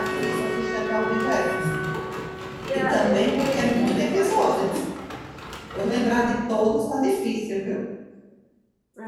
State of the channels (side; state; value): both; identical; correlation 1.00